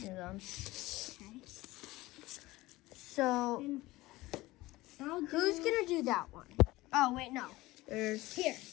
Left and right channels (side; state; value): right; quieter; 19.1 dB